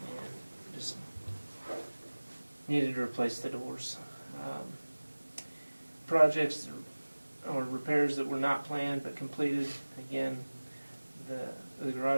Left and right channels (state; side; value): inverted; both; correlation -1.00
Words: just needed to replace the doors. Projects or repairs that were not planned but completed. Again, the